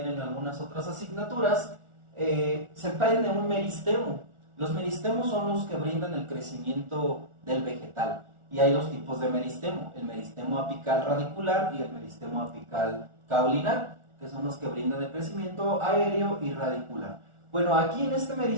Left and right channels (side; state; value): left; late; 1.4 ms